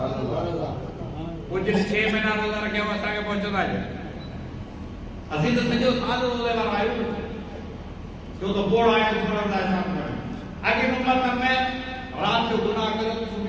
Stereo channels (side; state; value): both; identical; correlation 1.00